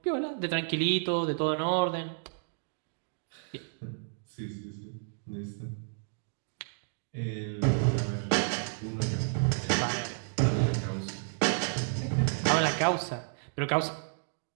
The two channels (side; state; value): left; silent; digital silence